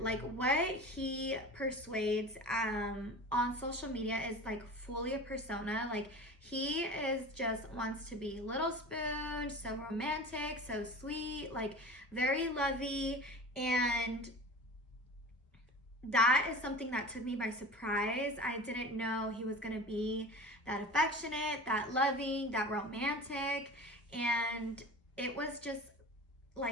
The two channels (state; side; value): normal; both; correlation 0.35